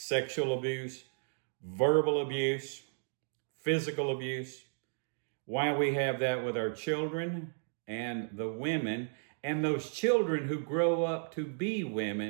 abuse, verbal abuse, physical abuse. Why we have that with our children and the women and those children who grow up to be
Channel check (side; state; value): left; silent; digital silence